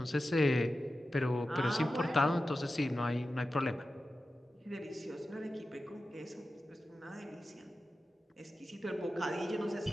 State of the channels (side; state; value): both; normal; correlation 0.93